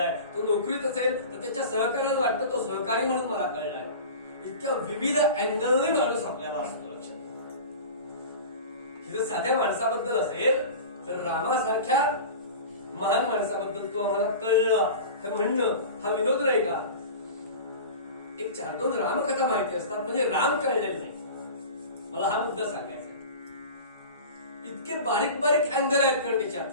तो नोकरीत असेल तर त्याच्या सहकार्याला वाटतं तो सहकारी म्हणून मला कळलाय. इतक्या विविध अँगलने माणूस आपल्याला असतो. लक्षात जर साध्या माणसाबद्दल असेल तर रामासारख्या महान माणसाबद्दल तो आम्हाला कळला हे म्हणणं हा विनोद नाही का? एक 4-2 रामकथा माहिती असतात म्हणजे राम कळलेले नाही. मला हा मुद्दा सांगायचा. इतके बारीक बारीक अँगल आहेत कारण त्याच्यात.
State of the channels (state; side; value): inverted; both; correlation -0.35